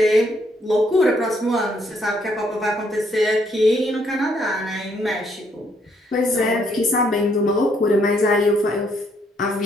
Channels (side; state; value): both; normal; correlation 0.71